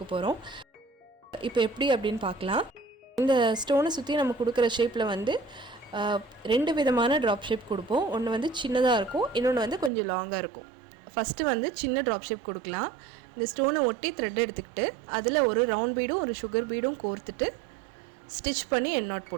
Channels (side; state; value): left; drops out; at 9.9 s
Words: போகிறோம். இப்போ எப்படி அப்படின்னு பார்க்கலாம். இந்த ஸ்டோனை சுற்றி நம்ம கொடுக்குற ஷேப்பில் வந்து 2 விதமான ட்ராப் ஷேப் கொடுப்போம். ஒன்று வந்து சின்னதாக இருக்கும், இன்னொன்று வந்து கொஞ்சம் லாங்காக இருக்கும். ஃபஸ்ட்டு வந்து சின்ன ட்ராப் ஷேப் கொடுக்கலாம். இந்த ஸ்டோனை ஒட்டி த்ரெட் எடுத்துக்கிட்டு அதில் ஒரு ரவுண்ட் பீடும் ஒரு சுகர் பீடும் கோர்த்துட்டு ஸ்டிச் பண்ணி எண்ணாட்